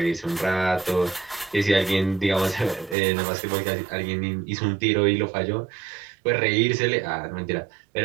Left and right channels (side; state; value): left; drops out; at 3.0 s